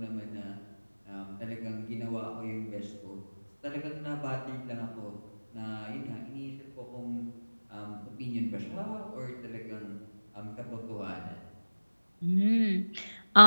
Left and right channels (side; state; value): both; inverted; correlation -1.00